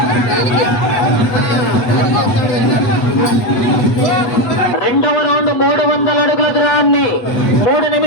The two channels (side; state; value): right; late; 8.1 ms